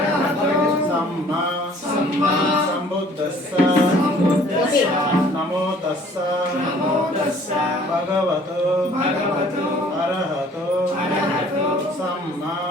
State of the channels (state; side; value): normal; both; correlation 0.55